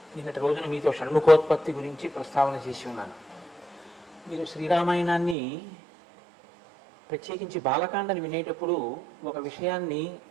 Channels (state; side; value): drops out; left; at 5.4 s